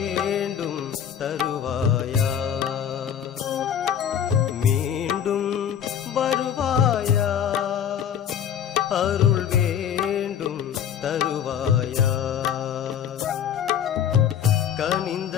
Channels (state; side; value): quieter; right; 8.9 dB